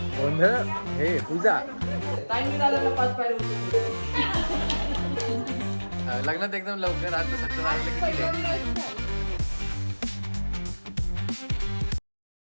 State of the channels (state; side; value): inverted; both; correlation -1.00